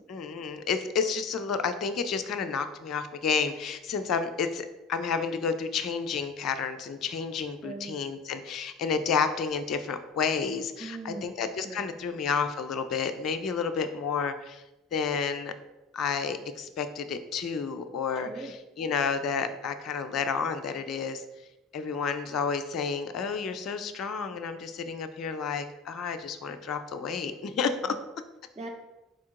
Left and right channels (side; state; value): right; quieter; 5.3 dB